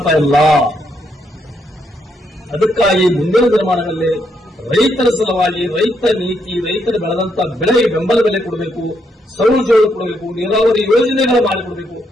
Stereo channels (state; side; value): normal; both; correlation 0.76